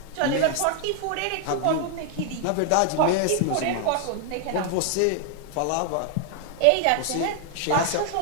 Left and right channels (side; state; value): both; different; correlation 0.00